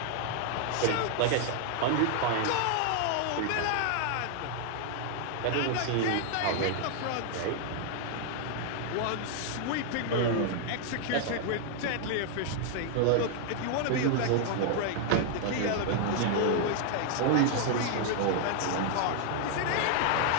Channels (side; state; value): both; different; correlation 0.00